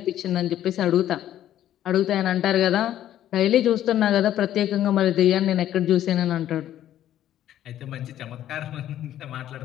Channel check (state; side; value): quieter; right; 12.0 dB